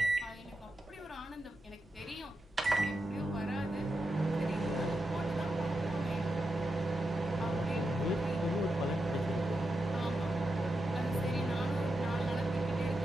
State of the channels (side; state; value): both; normal; correlation 0.87